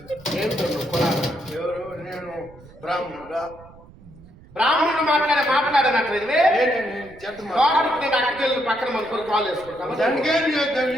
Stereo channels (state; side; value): noise; right; rumble, 22 dB below the sound